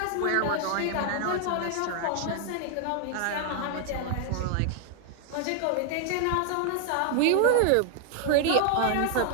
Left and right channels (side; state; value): both; different; correlation 0.00